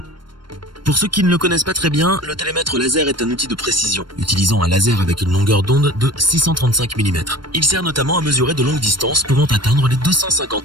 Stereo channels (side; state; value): left; late; 0.72 ms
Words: Pour ceux qui ne le connaissent pas très bien, le télémètre laser est un outil de précision, utilisant un laser avec une longueur d'onde de 635 mm. Il sert notamment à mesurer de longues distances pouvant atteindre les